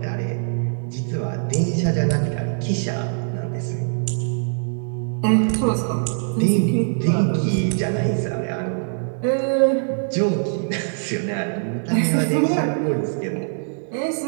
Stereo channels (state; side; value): silent; left; digital silence